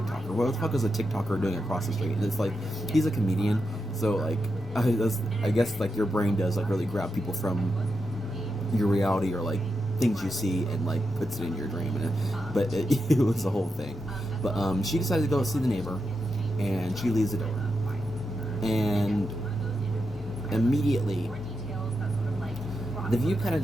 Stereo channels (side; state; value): both; normal; correlation 0.86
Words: What the fuck is a TikToker doing across the street? And it's he's a comedian, so I guess your brain does really grab people from your reality, or things you see, and puts it in your dream. But it was a whole thing. But she decided to go see the neighbor, and she leaves the door, and immediately the view kind of